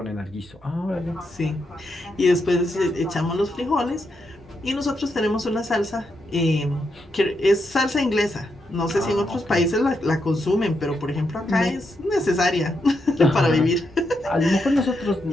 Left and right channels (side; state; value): both; normal; correlation 0.82